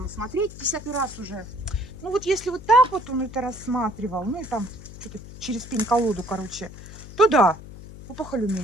смотреть, 10-й раз уже. Ну вот если вот так вот он это рассматривал, ну и там что-то через пень-колоду, короче, то да, опухоль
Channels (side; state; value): left; noise; hum, 15 dB below the sound